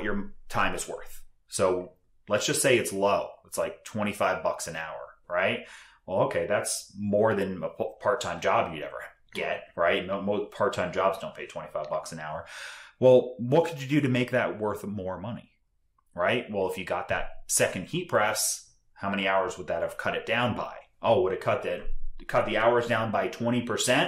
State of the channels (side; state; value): both; identical; correlation 1.00